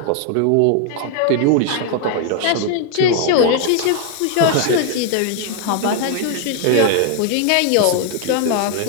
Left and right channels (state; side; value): different; both; correlation 0.00